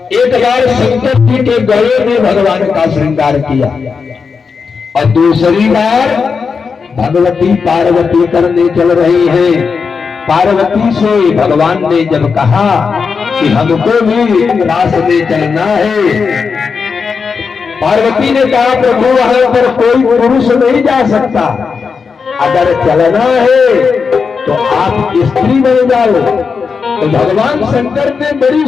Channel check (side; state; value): right; quieter; 5.4 dB